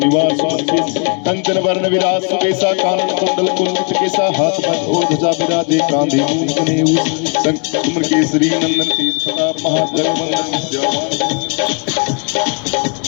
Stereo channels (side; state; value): right; quieter; 37.4 dB